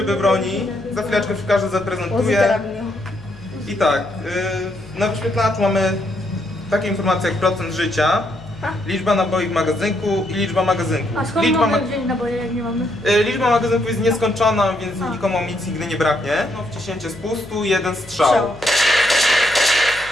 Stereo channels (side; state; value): left; noise; hum, 20 dB below the sound